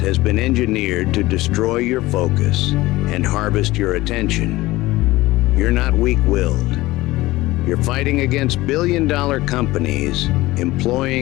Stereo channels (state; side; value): quieter; right; 18.7 dB